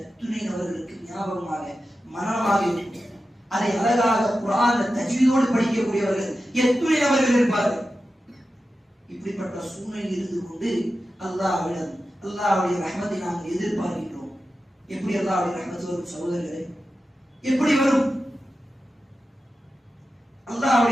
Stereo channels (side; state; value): both; normal; correlation 0.92